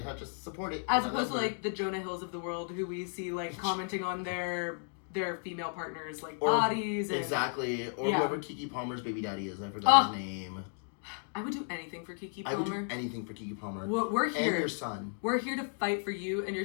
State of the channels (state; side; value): silent; right; 55 dB below the other